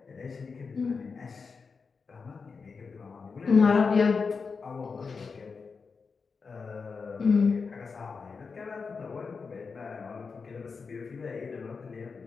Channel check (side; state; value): right; quieter; 5.0 dB